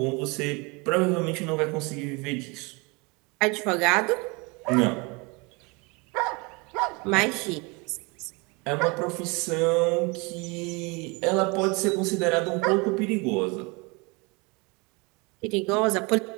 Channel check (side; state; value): left; quieter; 28.3 dB